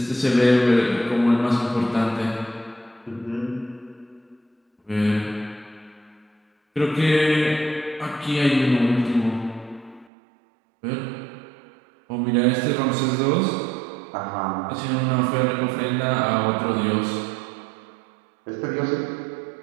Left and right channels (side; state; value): left; drops out; at 10.1 s